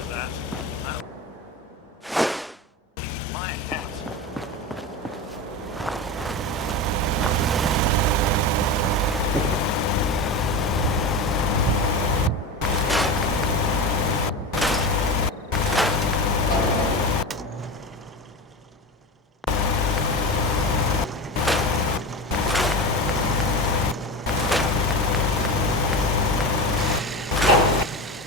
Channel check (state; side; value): normal; both; correlation 0.23